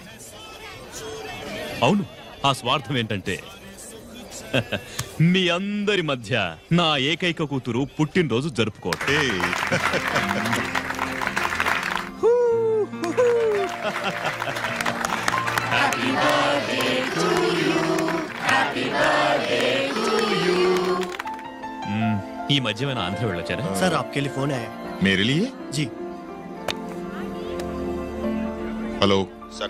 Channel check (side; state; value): both; identical; correlation 1.00